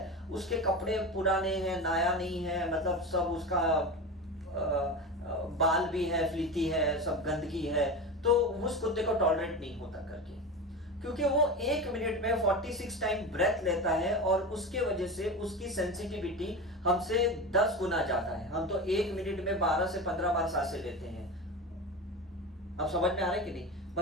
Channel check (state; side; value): normal; both; correlation 0.25